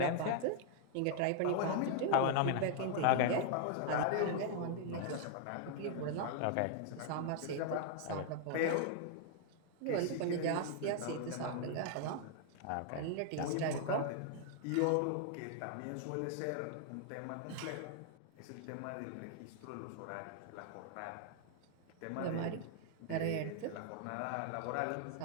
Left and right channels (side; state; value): both; different; correlation -0.01